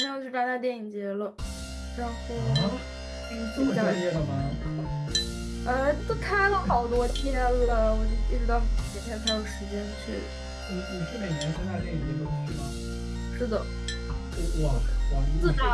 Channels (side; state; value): both; identical; correlation 1.00